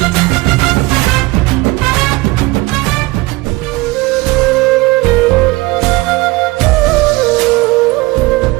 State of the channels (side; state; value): left; quieter; 21.7 dB